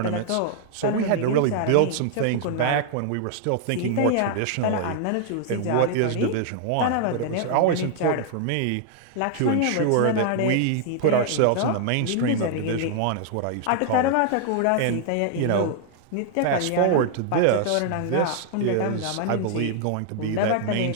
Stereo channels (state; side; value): different; both; correlation 0.00